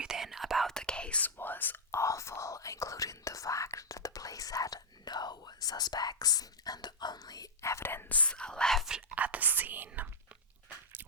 about the case was awful, including the fact that the police had no suspects, and the only evidence left at the scene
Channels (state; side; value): normal; both; correlation -0.04